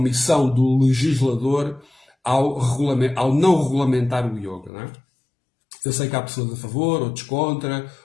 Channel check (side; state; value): right; drops out; at 4.7 s